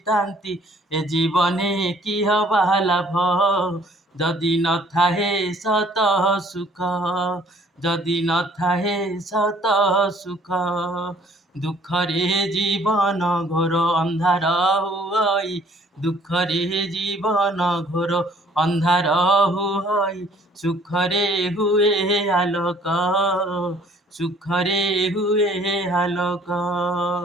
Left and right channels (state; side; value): normal; both; correlation 0.58